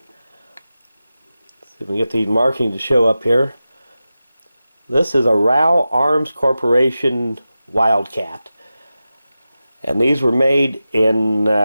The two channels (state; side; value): inverted; both; correlation -0.93